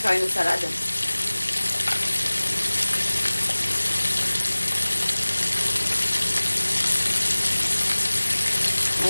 faire une salade.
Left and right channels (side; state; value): both; inverted; correlation -1.00